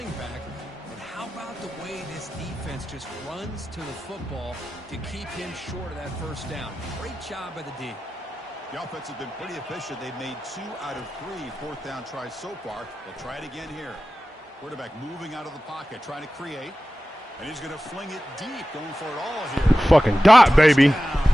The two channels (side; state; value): both; normal; correlation 0.95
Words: back. But how about the way this defense just runs to the football to keep him short of that first down? Great job by the D. The offense has been pretty efficient. They've made 2 out of 3 fourth down tries so far. They'll try it again here. Quarterback moving out of the pocket, trying to create. And he's going to fling it deep, going for it all here. Fucking dot, baby.